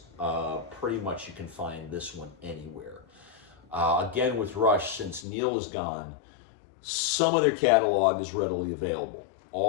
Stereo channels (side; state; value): right; drops out; at 5.2 s